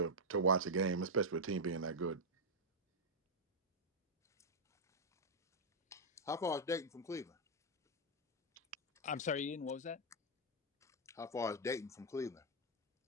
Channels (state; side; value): normal; both; correlation -0.03